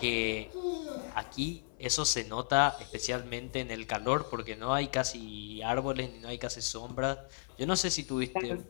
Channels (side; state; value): right; silent; 55 dB below the other